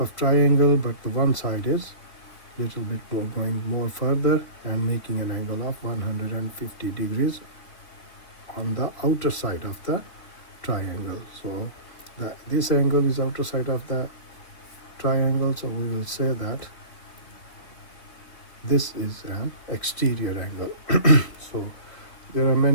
triangle, but the one side is little bit going more further and making an angle of 150 degrees on the outer side of the triangle. So this angle is outer side of the triangle, so we will say that this is an exterior angle. So there are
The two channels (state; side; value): late; right; 3.3 ms